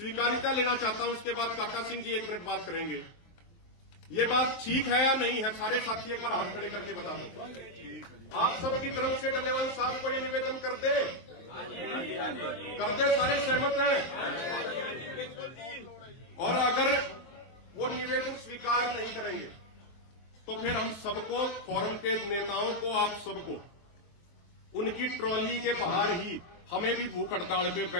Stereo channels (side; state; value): right; late; 23 ms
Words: लेना चाहता हूं। उसके बाद काका सिंह जी 1 मिनट बात करेंगे। ये बात ठीक है या नहीं है? सारे साथी एक बार हाथ खड़े करके बता दो। आप सबकी तरफ से डल्लेवाल साहब को ये निवेदन करते सारे सहमत हैं? और अगर वो निवेदन स्वीकार नहीं करेंगे तो फिर हम सबको, फोरम के नेताओं को, आप सबको उनकी ट्रॉली के बाहर ही हमें भी भूख हड़ताल पे